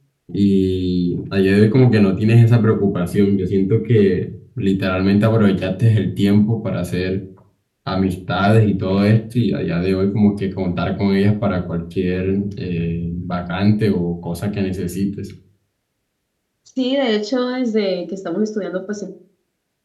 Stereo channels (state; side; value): identical; both; correlation 1.00